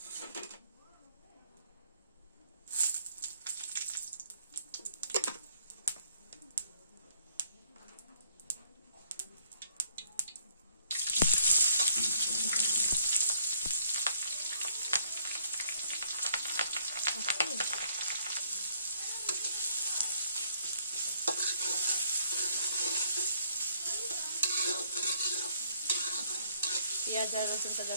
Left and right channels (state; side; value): inverted; both; correlation -0.66